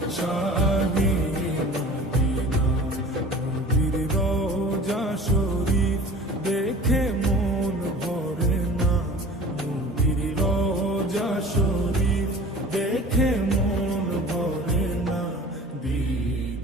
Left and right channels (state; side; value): normal; both; correlation 0.42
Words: শাহে মদিনা। নবীর রোজা শরীফ দেখে মন ভরে না, নবীর রোজা শরীফ দেখে মন ভরে না।